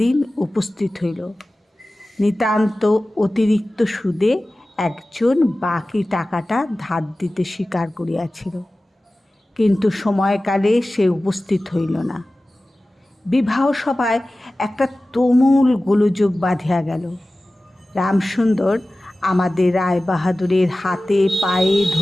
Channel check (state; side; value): normal; both; correlation 0.96